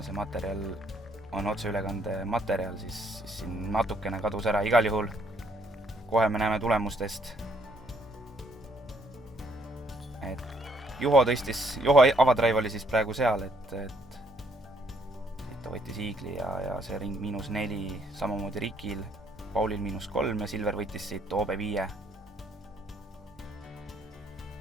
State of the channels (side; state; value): both; normal; correlation 0.68